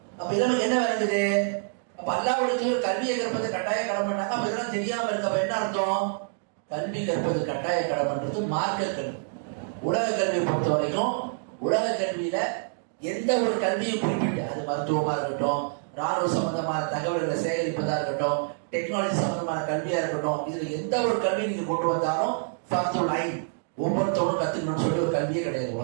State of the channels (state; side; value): silent; left; digital silence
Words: அப்ப இதெல்லாம் என்ன வருது, அப்ப அல்லாஹ்வுக்கு கல்வியை கற்பது கட்டாய கடமைன்னாங்க. அப்ப இதெல்லாம் தெரியாம இருக்க அப்ப என்ன அர்த்தம், கல்வி கற்பது கட்டாய கடமைன்றது மார்க்க கல்வி. உலக கல்வியை பொறுத்த வரைக்கும் உலக கல்வியில எந்த ஒரு கல்வியும் குறிப்பிட்டு, அது மருத்துவமா இருக்கட்டும், ராணுவ சம்பந்தமான தகவல்களை சேகரிப்பதா இருக்கட்டும், டெக்னாலஜி சம்பந்தமான கல்வியா இருக்கட்டும், இதுல எந்த ஒரு கல்வி நீங்க கொண்டு வந்தாலும் ஃபர்துல் ஐன், ஒவ்வொருத்தவரும் கத்துக்கணும்னு சொல்லி ஒரு கல்வியே கிடையாது